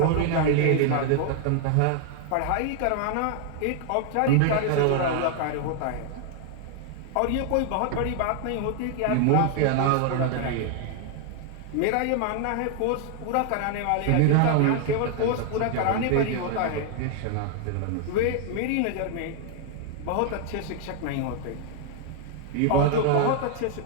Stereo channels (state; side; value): different; both; correlation 0.00